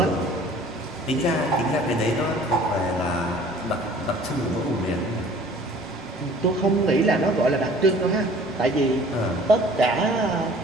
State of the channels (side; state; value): both; normal; correlation 0.50